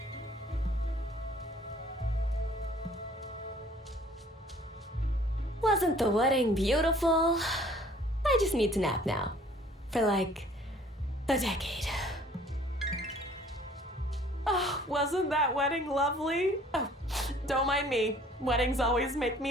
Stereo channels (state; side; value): normal; both; correlation 0.55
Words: Wasn't the wedding beautiful? I just need to nap now. For like a decade. Oh, wasn't that wedding lovely? Oh, don't mind me. Weddings always make